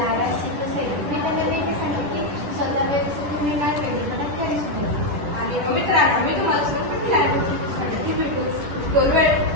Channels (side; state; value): left; late; 10 ms